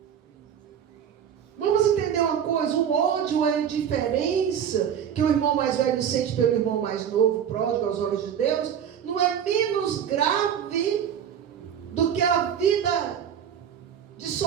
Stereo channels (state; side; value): quieter; left; 8.8 dB